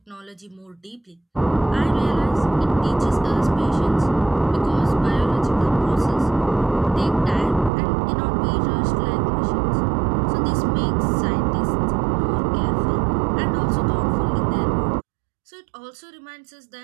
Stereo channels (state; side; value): drops out; left; at 7.7 s